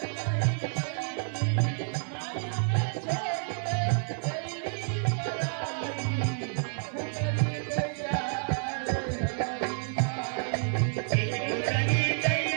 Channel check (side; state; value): left; silent; 58 dB below the other